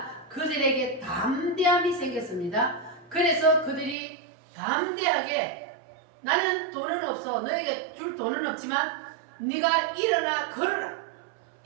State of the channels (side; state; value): left; drops out; at 4.0 s